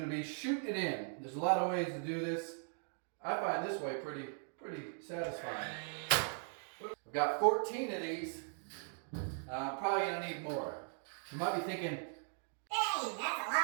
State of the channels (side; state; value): left; silent; 52 dB below the other